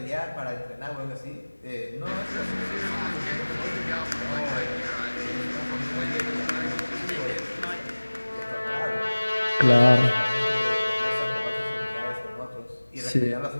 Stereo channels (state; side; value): inverted; both; correlation -1.00